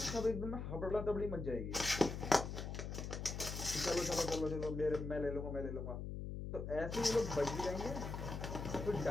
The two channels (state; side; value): noise; left; hum, 5 dB below the sound